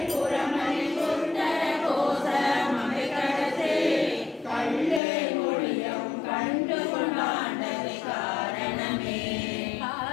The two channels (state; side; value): drops out; right; at 5.0 s